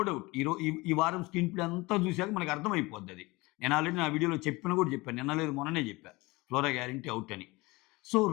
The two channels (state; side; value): quieter; right; 22.9 dB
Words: డౌట్. ఈ వారం స్క్రీన్ ప్లే అంతా చూసాక మనకు అర్థమైపోద్దది. నేను ఆల్రెడీ నా వీడియోలో చెప్పాను. నిన్న లేదు మొన్ననే చెప్పా. ఫ్లోరా గ్యారంటీ ఔట్ అని. సో,